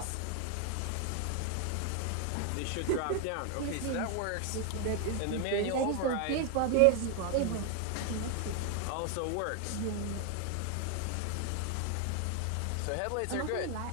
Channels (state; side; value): different; both; correlation 0.00